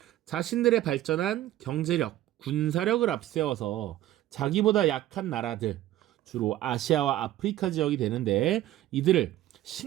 자신들의 발전한 경제력, 군사력을 앞세워서 자기보다 약한 나라들, 주로 아시아와 아프리카 지역이 되는데, 이들을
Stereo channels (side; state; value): left; quieter; 14.2 dB